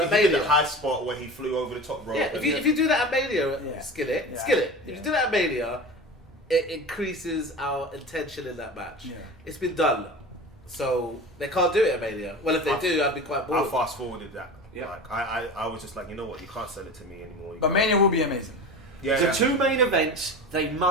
he at did the Mania. high spot where he flew over the top rope. Yeah, if you do that at Mania, Yeah. Skillit. Yeah. If you do that at Mania, it increases our intention in that match. Yeah. It's been done, so they can't do it at Mania. Well, if they do, I'd be quite I bored. fast forwarded that. Yeah. Like I was just like, you know what, you can't sell it to me anymore. You But can't. Mania will be amazing. Yeah, The yeah. two main events, they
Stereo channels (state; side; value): normal; both; correlation 0.32